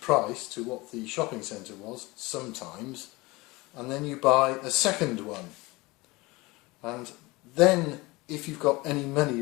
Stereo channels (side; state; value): right; quieter; 22.6 dB